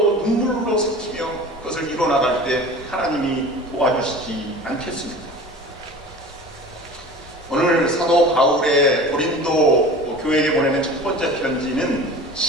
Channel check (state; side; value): normal; both; correlation 0.39